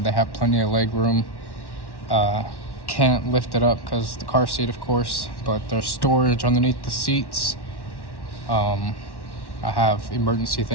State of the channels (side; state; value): right; late; 1.1 ms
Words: have plenty of leg room. Can't lift it up because the car seat, of course, but there's storage underneath the seats. I have emergency